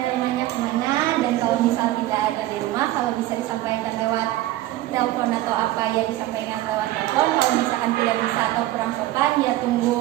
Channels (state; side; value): quieter; left; 15.5 dB